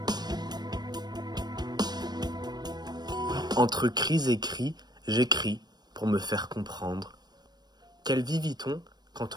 Entre cris et cris, j'écris pour me faire comprendre. Quelle vie vit-on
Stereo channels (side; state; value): left; late; 0.20 ms